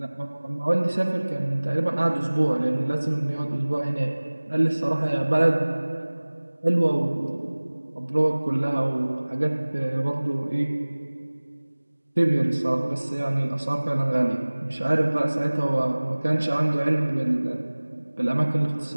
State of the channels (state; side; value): inverted; both; correlation -1.00